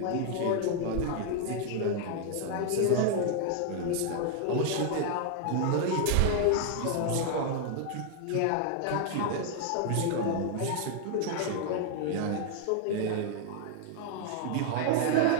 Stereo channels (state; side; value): different; both; correlation 0.00